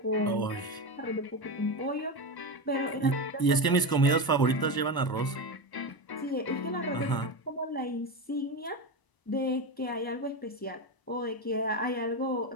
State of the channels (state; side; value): late; right; 1.0 ms